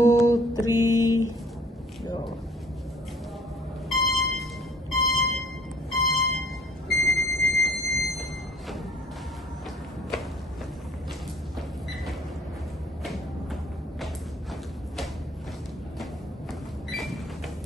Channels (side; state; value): both; normal; correlation 0.55